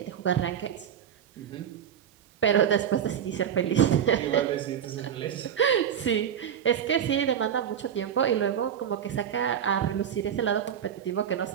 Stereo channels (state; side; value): quieter; left; 8.9 dB